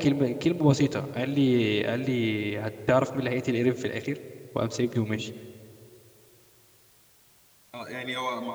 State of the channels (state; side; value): identical; both; correlation 1.00